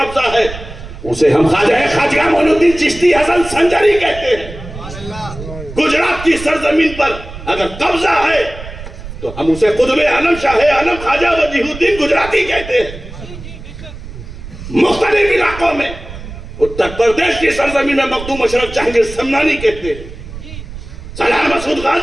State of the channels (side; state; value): right; noise; rumble, 13 dB below the sound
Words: ہے، اسے ہم خواجہ معین الدین چشتی حسن سنجری کہتے ہیں۔ گجرات کی سرزمین پر اگر قبضہ ہے تو ہم اسے قطب عالم شاہ عالم خواجہ وجیہ الدین گجراتی کہتے ہیں۔ مختلف علاقوں میں اتر پردیش کی سرزمین میں مخدوم اشرف جہانگیر سمنانی کہتے ہیں، سلام مسعود